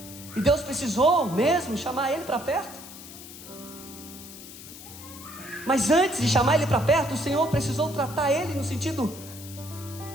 e Deus precisou mesmo chamar ele para perto. Mas antes de chamar ele para perto, o Senhor precisou tratar ele no sentido:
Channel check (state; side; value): noise; left; hiss, 15 dB below the sound